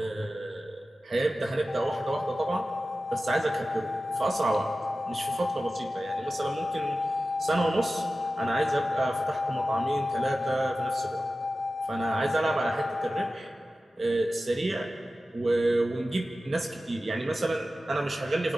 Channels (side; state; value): both; normal; correlation 0.94